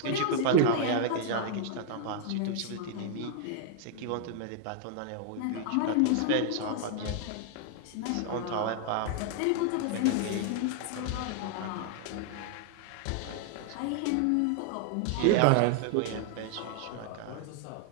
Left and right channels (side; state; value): both; different; correlation 0.00